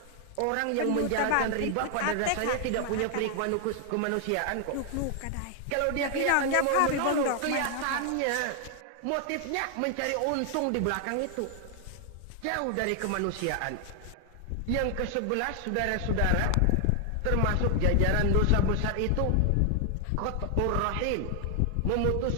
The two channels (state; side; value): different; both; correlation 0.00